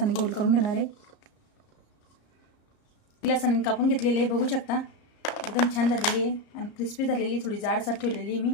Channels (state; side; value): late; right; 34 ms